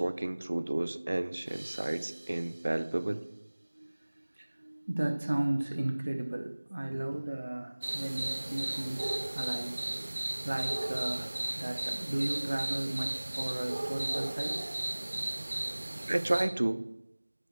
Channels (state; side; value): inverted; both; correlation -1.00